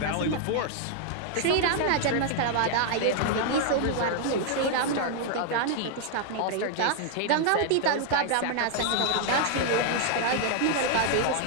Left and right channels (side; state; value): both; different; correlation 0.00